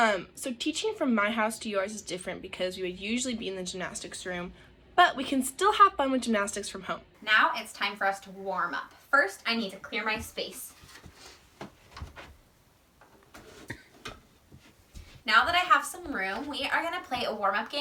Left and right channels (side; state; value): both; identical; correlation 1.00